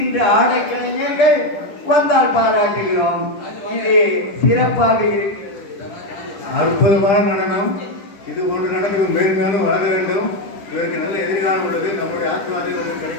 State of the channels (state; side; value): late; right; 10 ms